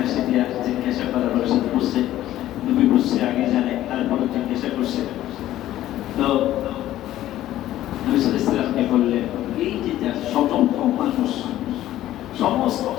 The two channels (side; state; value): right; quieter; 13.7 dB